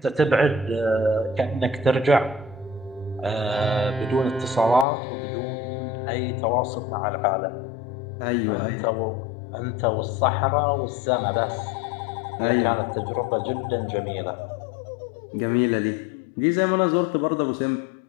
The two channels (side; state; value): right; drops out; at 4.9 s